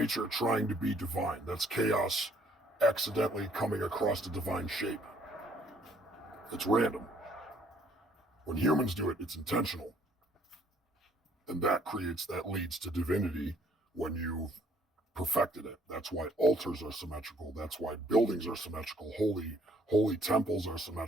trying to be divine. That's chaos accidentally coming across a divine shape. It's random. When humans do it, it's intentional. And that leads to divinity when you've perfected it. That's why altars are symmetrical. That's why buildings are symmetrical. Holy temples are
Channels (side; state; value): both; normal; correlation 0.63